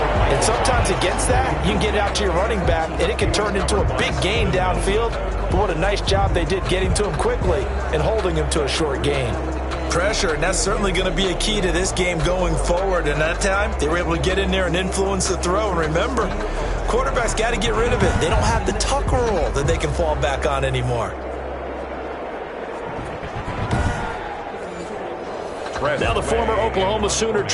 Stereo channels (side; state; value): both; identical; correlation 1.00